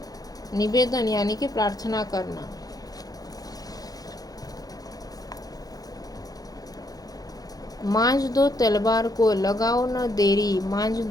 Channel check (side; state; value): right; late; 0.18 ms